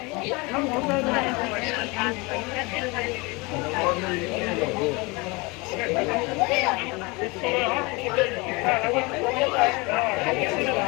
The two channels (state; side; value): quieter; right; 26.2 dB